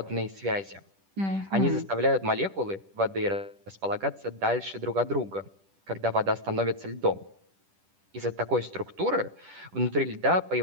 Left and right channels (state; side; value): late; left; 10 ms